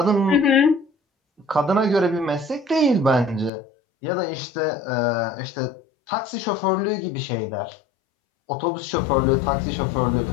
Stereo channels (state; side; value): drops out; right; at 3.5 s